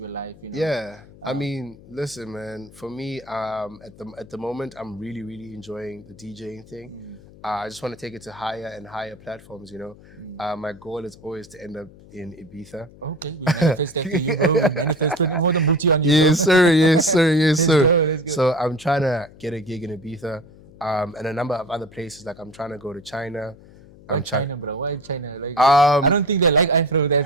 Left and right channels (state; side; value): noise; left; hum, 22 dB below the sound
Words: your life, you know. Yeah. I mean, listen, man. For me, at the moment, I'm really, really enjoying the DJing thing. I just want to take it to higher and higher platforms, you know. My goal is always to end up in Ibiza. Okay, we manifest that for you, bro. We manifest putting more than booty on you, bro. Yes, sir. Let's go. So I'm trying to get a gig in Ibiza, and a number of other places. Like I'm trying to go to China. Why China, bro? Why China? Like, Um, I don't think they like Afro that